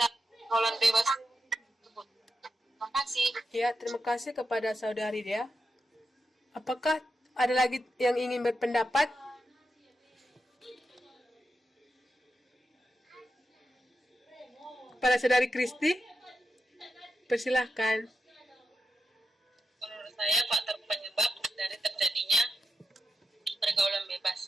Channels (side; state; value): both; normal; correlation 0.87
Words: bebas tersebut. Terima kasih. Ya, terima kasih kepada saudari Dea. Apakah ada lagi yang ingin berpendapat? Kepada saudari Kristi, persilahkan. Menurut saya faktor penyebab dari terjadinya pergaulan